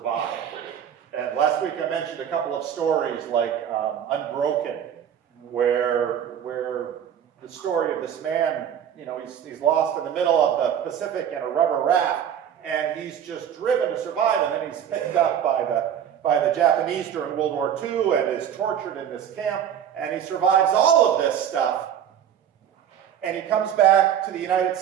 And last week I mentioned a couple of stories like Unbroken, where the story of this man, he's lost in the middle of the Pacific in a rubber raft, and he's just driven to survive, and then he's picked up by the Japanese during World War II and is tortured in this camp, and he survives all of this stuff. And he comes back to the United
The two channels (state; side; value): quieter; left; 9.1 dB